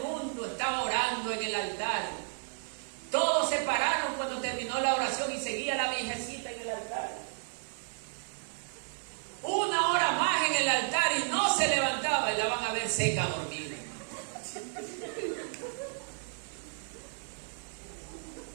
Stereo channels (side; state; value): left; silent; 55 dB below the other